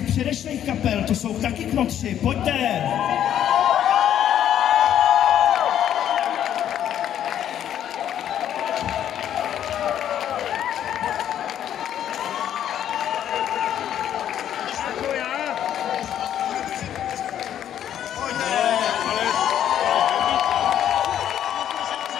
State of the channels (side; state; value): right; quieter; 10.4 dB